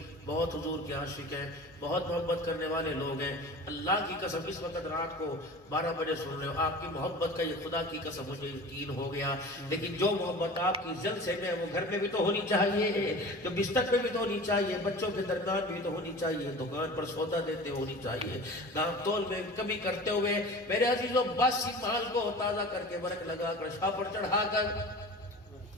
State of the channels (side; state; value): both; normal; correlation 0.37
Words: بہت حضور کے عاشق ہیں، بہت محبت کرنے والے لوگ ہیں. اللہ کی قسم اس وقت رات کو 12 بجے سن رہے ہو، آپ کی محبت کا یہ خدا کی قسم مجھے یقین ہو گیا. لیکن جو محبت آپ کی جلسے میں وہ گھر میں بھی تو ہونی چاہیے، جو بستر پہ بھی تو ہونی چاہیے، بچوں کے درمیان بھی تو ہونی چاہیے، دکان پر سودا دیتے ہونی چاہیے، دام تول میں کمی کرتے ہوئے میرے عزیزوں باسی مال کو تازہ کر کے برک لگا کر شاہ پر چڑھا کر.